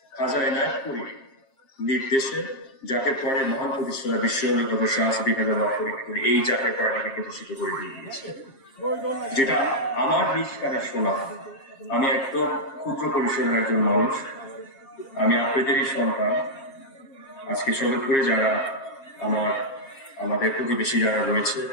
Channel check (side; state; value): right; late; 7.4 ms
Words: খাজা এনায়েতপুরী নির্দেশে জাকের পরে মহান প্রতিষ্ঠাতা বিশ্ব অলিগত শাহী এই জাকের পরটাকে প্রতিষ্ঠিত করে দিয়ে দিয়েছে, যেটা আমার নিজ কানে শোনা। আমি একদম ক্ষুদ্র পরিসরের একজন মানুষ, আমি আপনাদেরই সন্তান। আজকে সদরপুরে যারা আমাদের প্রতিবেশী যারা রয়েছে,